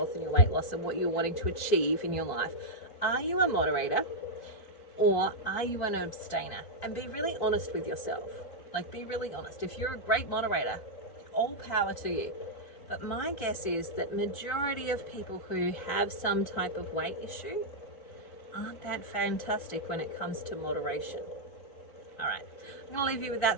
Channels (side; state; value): right; late; 4.5 ms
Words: and your weight loss and what you're wanting to achieve in your life. Are you a moderator or are you an abstainer? And be really honest with yourself. Like, be really honest. If you're a great moderator, all power to you. But my guess is that majority of people who have some type of weight issue aren't that fantastic when it comes to moderation. All right. I'm going to leave you with